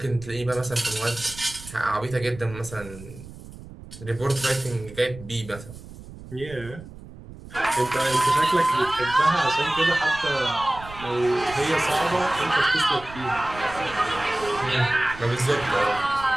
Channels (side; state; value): right; noise; rumble, 16 dB below the sound